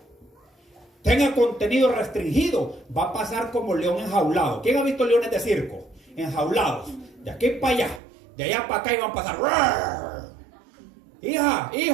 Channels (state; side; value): drops out; left; at 8.0 s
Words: tenga contenido restringido, va a pasar como león enjaulado. ¿Quién ha visto leones de circo? Enjaulados, de aquí para allá, de allá para acá, y van a pasar. ¡Rar! Hija,